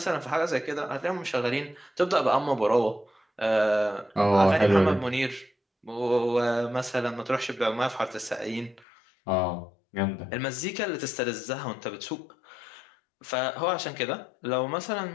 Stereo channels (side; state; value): right; drops out; at 8.8 s